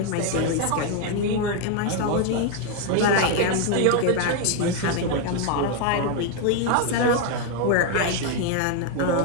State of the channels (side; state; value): both; different; correlation 0.01